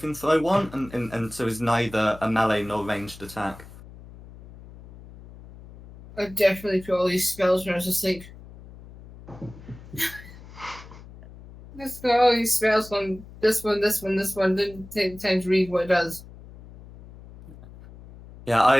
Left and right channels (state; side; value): noise; left; hum, 18 dB below the sound